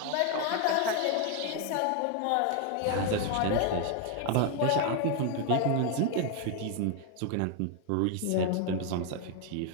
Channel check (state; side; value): different; both; correlation 0.01